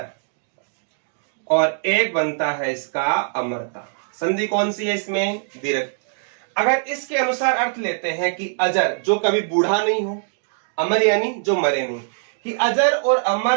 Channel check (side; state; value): left; silent; digital silence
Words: और एक बनता है इसका अमरता। संधि कौन सी है इसमें, दीर्घ। अगर इसके अनुसार अर्थ लेते हैं कि अजर जो कभी बूढ़ा नहीं हो, अमर यानी जो मरे नहीं, कि अजर और